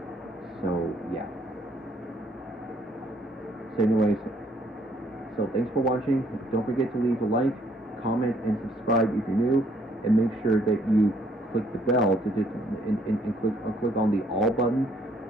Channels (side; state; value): both; normal; correlation 0.66